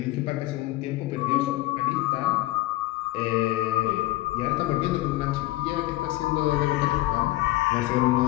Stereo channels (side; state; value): right; quieter; 17.8 dB